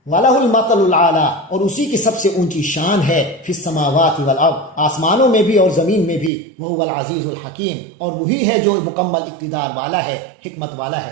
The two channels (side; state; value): left; drops out; at 6.3 s